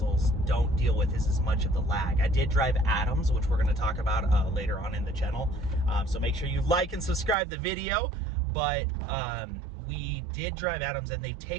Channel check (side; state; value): left; drops out; at 7.4 s